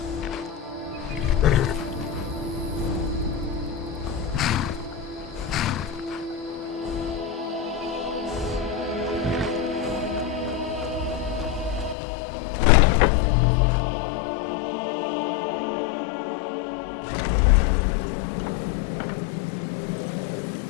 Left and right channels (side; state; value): right; drops out; at 12.0 s